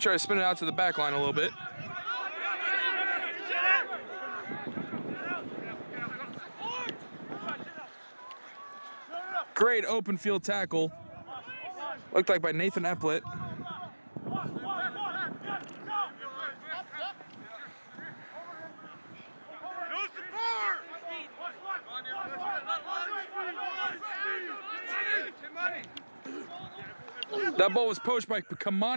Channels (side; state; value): both; inverted; correlation -1.00